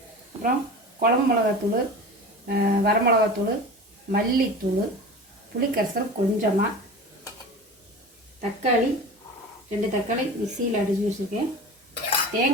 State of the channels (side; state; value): both; normal; correlation 0.34